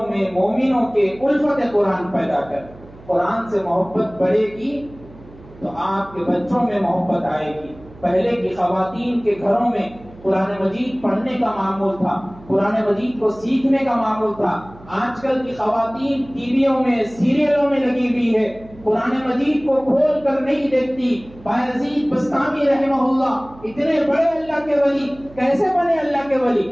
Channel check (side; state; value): right; noise; hum, 21 dB below the sound